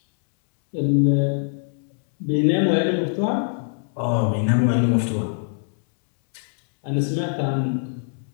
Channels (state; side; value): silent; right; 64 dB below the other